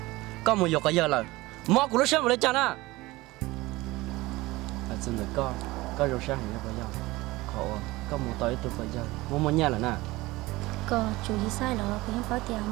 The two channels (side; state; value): left; quieter; 20.1 dB